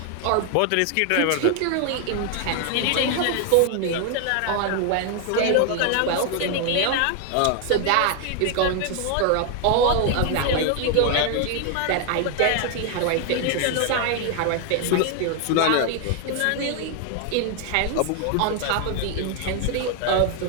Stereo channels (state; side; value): different; both; correlation 0.00